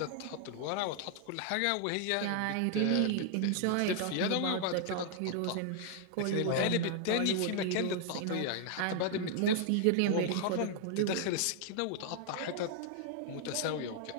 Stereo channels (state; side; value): different; both; correlation 0.00